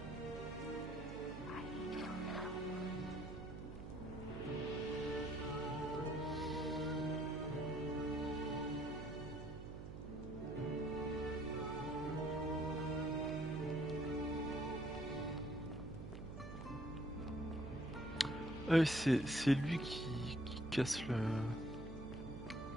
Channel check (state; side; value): noise; right; hum, 9 dB below the sound